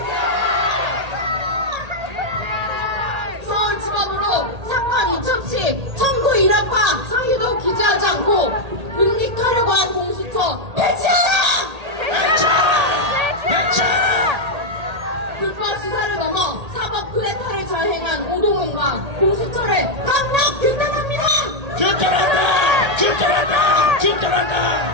서울지법으로 사건 이첩시 청구 일합과 상의도 기재하지 않고 묵직하려고 한 공수처 폐지하라! 불법 수사를 넘어 사법 쿠데타를 자행한 오동훈과 공수처를 강력 규탄합니다! 규탄한다. 규탄한다.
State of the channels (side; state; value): left; late; 1.8 ms